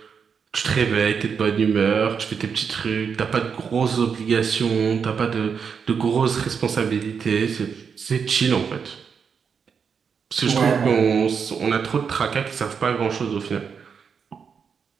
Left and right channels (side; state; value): left; quieter; 6.4 dB